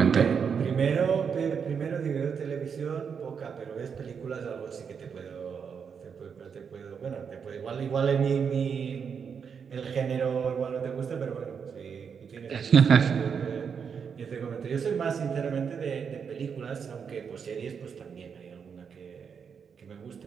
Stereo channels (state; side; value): quieter; left; 6.6 dB